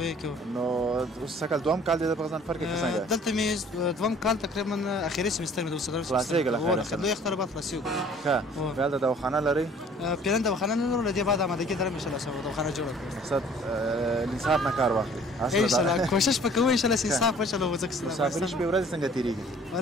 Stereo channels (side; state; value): both; normal; correlation 0.53